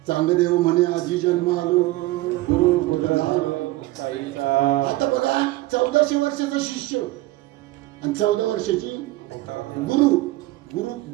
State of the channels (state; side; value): quieter; left; 18.2 dB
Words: चांगदेव म्हणे आजी जन्म आलो गुरु कुठं. आता बघा 1400 वर्षाचा शिष्य आणि 14 वर्षाची गुरु.